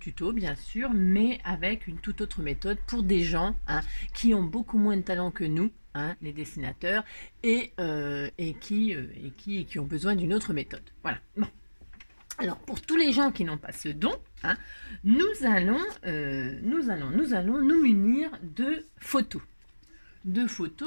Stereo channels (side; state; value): both; inverted; correlation -1.00